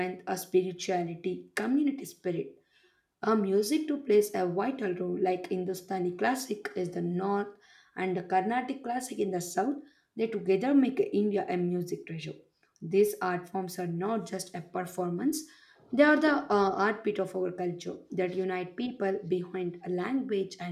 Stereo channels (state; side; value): identical; both; correlation 1.00